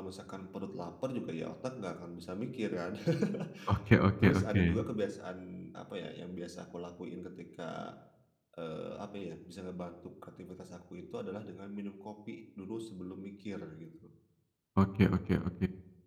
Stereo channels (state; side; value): identical; both; correlation 1.00